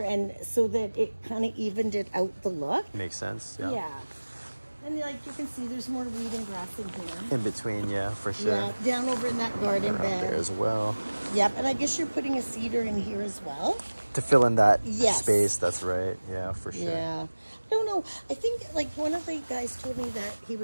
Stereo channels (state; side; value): inverted; both; correlation -1.00